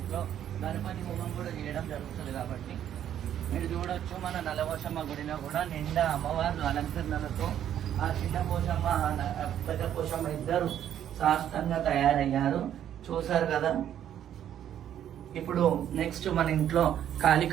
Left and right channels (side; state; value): left; quieter; 10.4 dB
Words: గణపతి హోమం కూడా చేయడం జరుగుతుంది కాబట్టి మీరు చూడొచ్చు. మన నలవశమ్మ గుడిలో కూడా నిండా అమ్మవారు అలంకరణలతో ఆ చిన్న పోషమ్మ పెద్ద పోషమ్మ ఇద్దరు శాస్త్రంగా తయారయ్యారు, చూసారు కదా. ఇప్పుడు నెక్స్ట్ మన ఇంట్లో